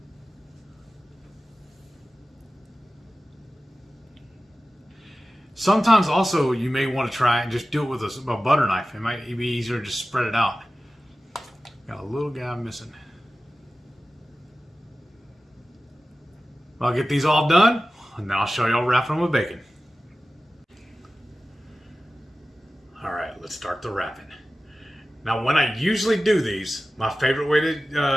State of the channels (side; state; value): both; normal; correlation 0.95